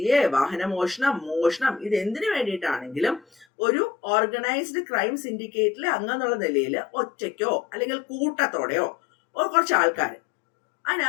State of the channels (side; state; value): right; drops out; at 3.5 s